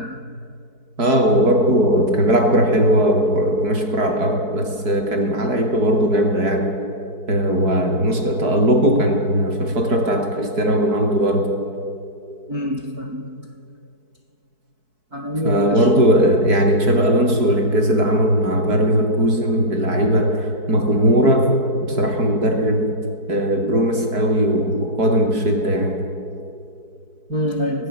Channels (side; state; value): left; late; 4.6 ms